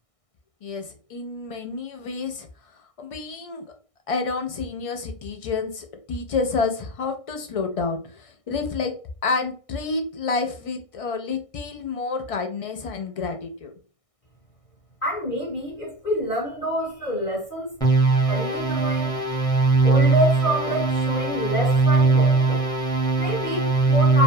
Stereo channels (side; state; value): right; late; 1.6 ms